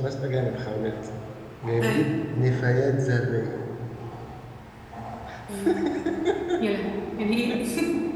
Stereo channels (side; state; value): both; identical; correlation 1.00